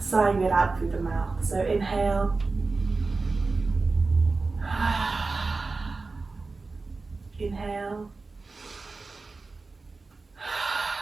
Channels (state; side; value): quieter; left; 3.8 dB